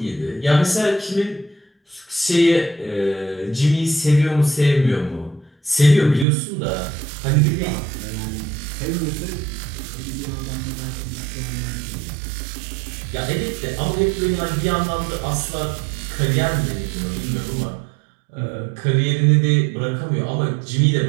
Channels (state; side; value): drops out; left; at 6.2 s